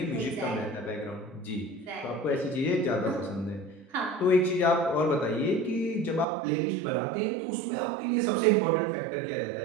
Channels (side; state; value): left; drops out; at 6.2 s